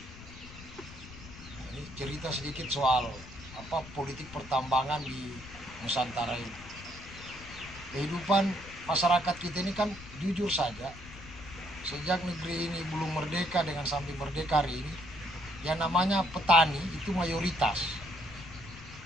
Ini cerita sedikit soal politik pertambangan di Nusantara ini. Kehidupan masyarakat kita ini kan jujur saja, sejak negeri ini belum merdeka dengan sampai merdeka hari ini, yang namanya petani itu mayoritas.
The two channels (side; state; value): left; noise; rumble, 16 dB below the sound